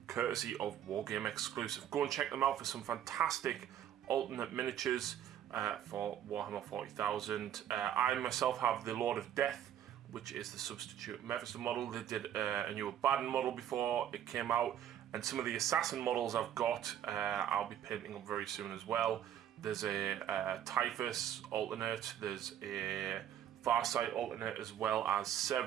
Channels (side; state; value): left; quieter; 10.4 dB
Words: courtesy of Wargame exclusive. Go and check them out for some fantastic alternate miniatures for Warhammer 40,000. I myself have the Lord of Death, which is the substitute Mephisto model. They did a new Abaddon model before it came out, and some of the Assassin models I've got I'll be painting up very soon as well. There's a Typhus alternate, there's a Farsight alternate, as well as